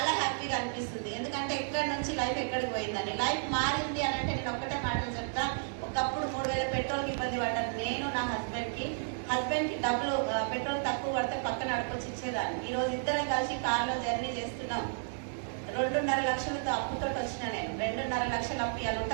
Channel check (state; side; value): silent; left; 55 dB below the other